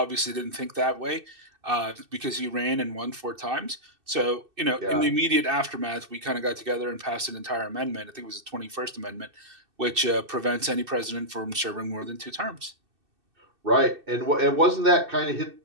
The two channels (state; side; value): late; left; 2.6 ms